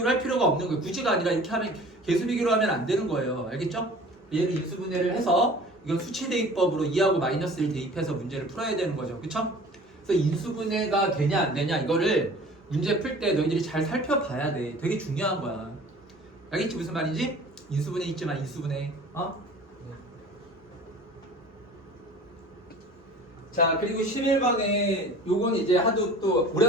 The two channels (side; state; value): both; normal; correlation 0.45